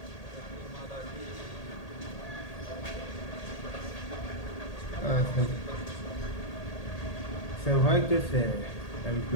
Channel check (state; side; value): late; right; 1.8 ms